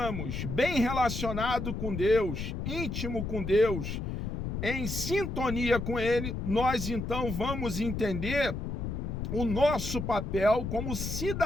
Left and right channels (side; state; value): left; noise; rumble, 4 dB below the sound